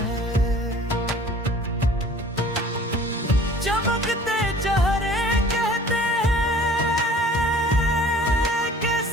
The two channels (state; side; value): normal; both; correlation 0.49